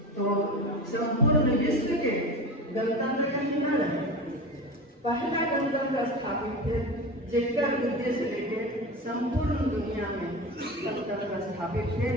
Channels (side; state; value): both; normal; correlation 0.29